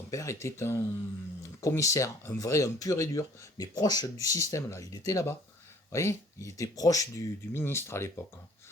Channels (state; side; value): normal; both; correlation 0.55